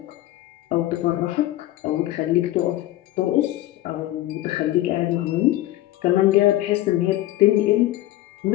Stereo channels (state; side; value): quieter; right; 15.7 dB